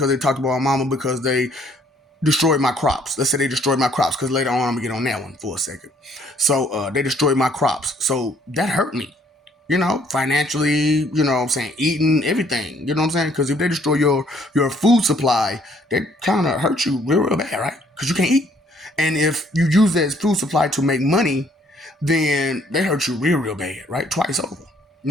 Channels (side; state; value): both; normal; correlation 0.64